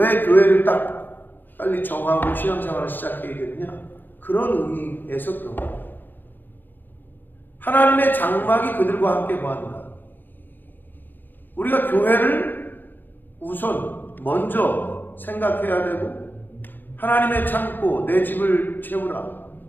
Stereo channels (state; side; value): late; right; 0.093 ms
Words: 교회를 딱 빨리 정하고 신앙생활을 시작해야 되느냐? 그런 의미에서 그런 거예요. 하나님의 장막이 그들과 함께 거한다. 우리가 교회를 우선 먼저 생각해야 되고, 하나님의 창고, 내 집을 채우라,